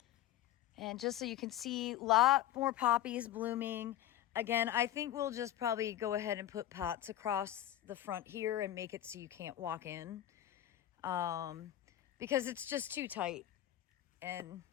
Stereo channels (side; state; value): right; quieter; 12.8 dB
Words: And just so you can see, a lot more poppies blooming. Again, I think we'll just probably go ahead and put pots across the front here and make it so you can't walk in. Because it's just too tight. And